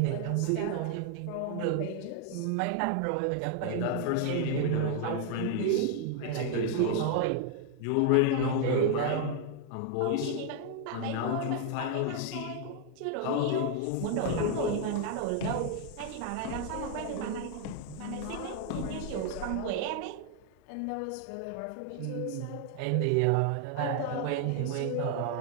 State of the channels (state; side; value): different; both; correlation 0.00